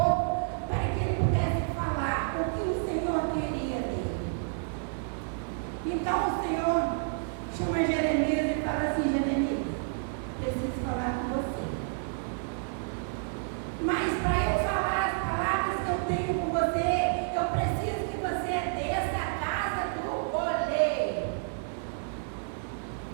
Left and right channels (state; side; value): silent; left; digital silence